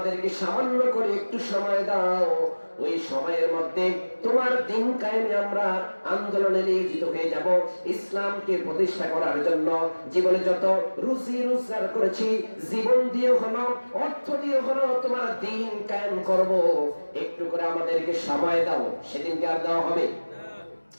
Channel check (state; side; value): inverted; both; correlation -1.00